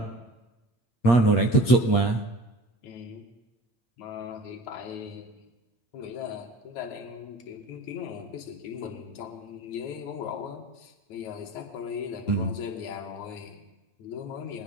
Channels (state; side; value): late; right; 8.5 ms